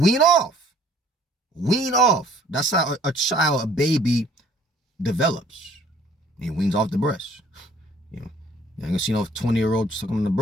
off. That's how a baby develops. He weans off the breast. You know, you ain't gonna see no 20-year-old sucking on the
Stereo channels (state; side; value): normal; both; correlation 0.57